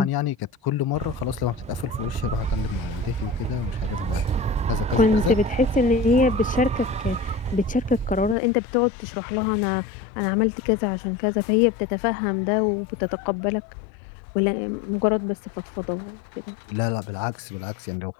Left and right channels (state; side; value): drops out; right; at 8.3 s